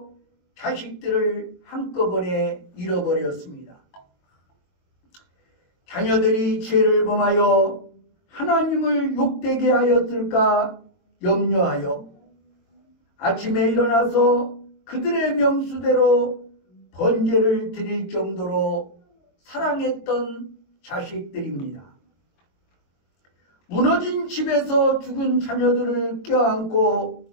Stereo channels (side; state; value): right; late; 22 ms